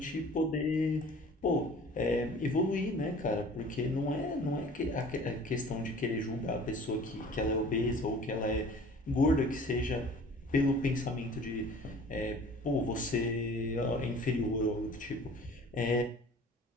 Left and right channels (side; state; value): both; normal; correlation 0.47